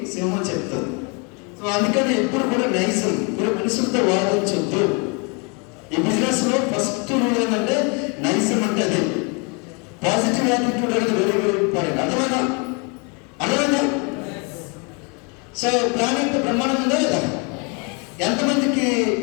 సింహం చెప్తుంది. సో అందుకని ఎప్పుడు కూడా నైజం, ఇప్పుడు మనుషులతో వాదించొద్దు. ఈ బిజినెస్ లో ఫస్ట్ రూల్ ఏంటంటే నైజం అంటే అదే. పాజిటివ్ యాటిట్యూడ్ అనేది వెరీ వెరీ ఇంపార్టెంట్. అర్థమైనా? సో ప్లానింగ్ బ్రహ్మాండం ఉందా లేదా? ఎంతమందికి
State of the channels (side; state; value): right; quieter; 33.1 dB